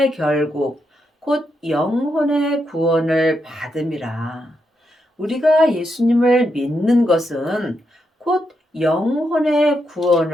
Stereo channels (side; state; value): both; normal; correlation 0.82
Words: 결국 곧 영혼의 구원을 받음이라. 우리가 예수님을 믿는 것은 곧 영혼의